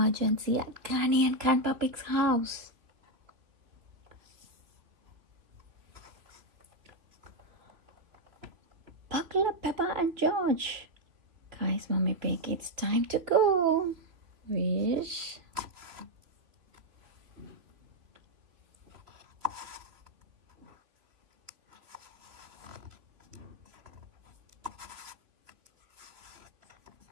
at Granny and Grandpa Pig's house. Buckle up, Peppa and George, cries Mommy Pig. It's time to go. Wish.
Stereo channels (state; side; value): late; left; 3.1 ms